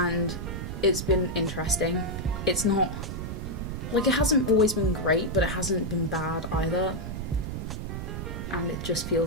it's been interesting. It's not, like, it hasn't always been great, but it hasn't been bad either. And it just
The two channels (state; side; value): noise; right; rumble, 5 dB below the sound